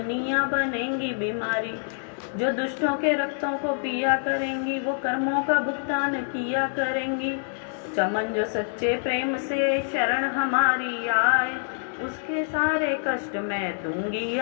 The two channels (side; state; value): right; silent; digital silence